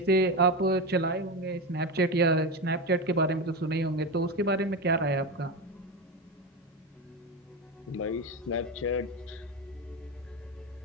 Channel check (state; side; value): normal; both; correlation 0.17